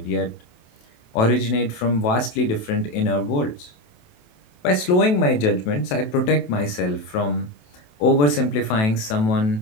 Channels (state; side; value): late; right; 28 ms